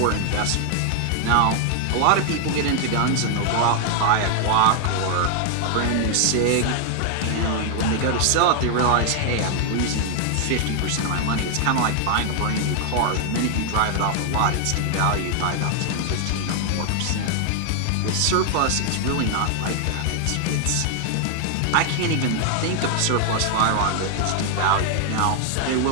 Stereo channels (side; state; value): both; different; correlation 0.00